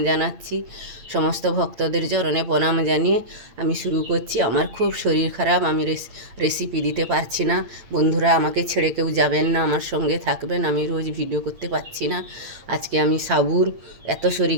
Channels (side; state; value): left; late; 8.7 ms